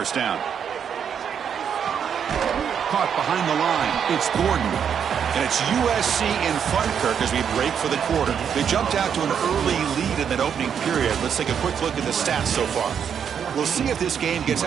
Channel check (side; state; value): left; quieter; 7.8 dB